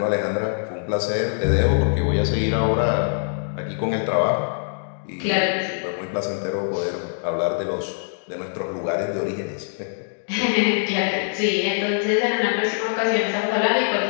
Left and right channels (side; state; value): right; silent; digital silence